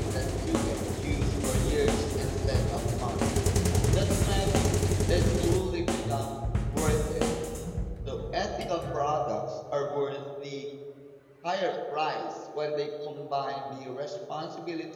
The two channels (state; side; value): identical; both; correlation 1.00